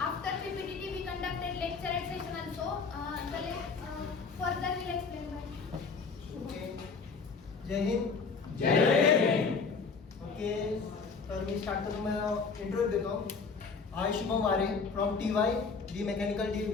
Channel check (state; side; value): quieter; right; 5.0 dB